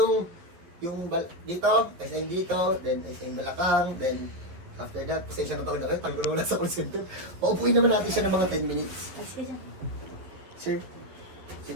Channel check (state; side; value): late; left; 12 ms